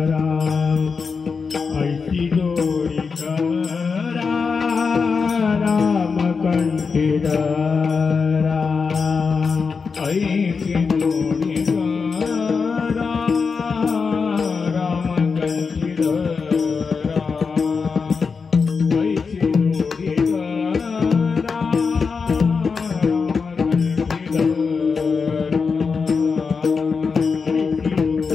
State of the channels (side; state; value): right; quieter; 5.2 dB